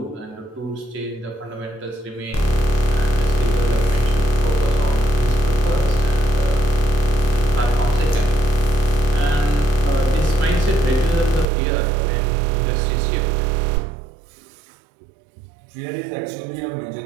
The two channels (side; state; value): left; drops out; at 11.5 s